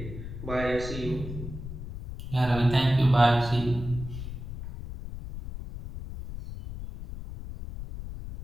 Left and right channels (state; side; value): noise; left; rumble, 9 dB below the sound